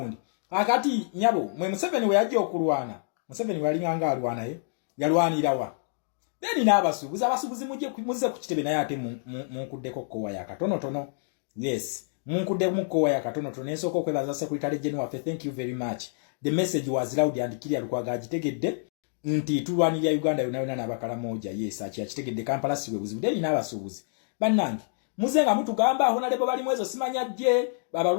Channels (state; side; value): silent; right; digital silence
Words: akati nyabo mwe Museveni we yajja okulwana Museveni wali nganga alwana yalwanira wa then n'abasuubuzi abasuubuzi muze ku kitebe naye ate munkuddeko kowa ya katono tono yes munkudde mu kowa ya katono tono ensoko okwebaza Secretary General waffe thank you very much the message was loud and clear Lukwago agitegedde nti tulwanirira Uganda yona n'abakala moja yes achitegedde Kampala siwe buzibu then n'abasuubuzi bannange muzenga mutugamba aho nalebo bali mwezo simanya je